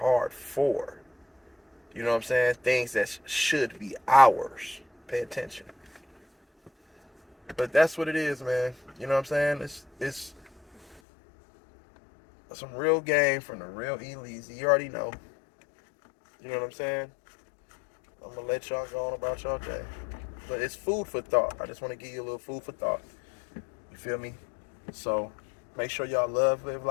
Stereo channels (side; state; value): right; drops out; at 11.0 s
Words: for. You know what I'm saying? Things that should be ours. Pay attention. But that's what it is, man. You know what I'm saying? It's some real game from the real E-Leezy. You already know. You know what I'm saying? I'm going to let y'all go on about y'all day. But it's food for thought. I just want to give you a little food for thought. You feel me? So make sure y'all live